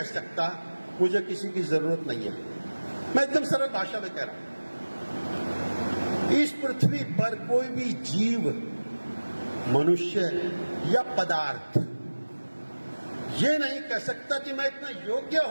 सकता मुझे किसी की जरूरत नहीं है। मैं एकदम सरल भाषा में कह रहा हूं, इस पृथ्वी पर कोई भी जीव, मनुष्य या पदार्थ ये नहीं कह सकता कि मैं इतना योग्य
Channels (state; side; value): inverted; both; correlation -1.00